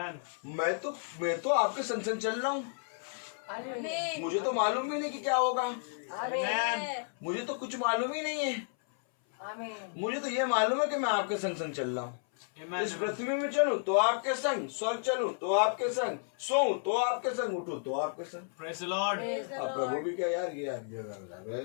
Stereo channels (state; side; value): silent; right; 56 dB below the other